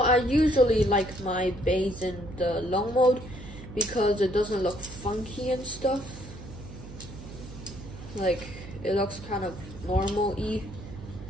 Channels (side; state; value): right; noise; hum, 14 dB below the sound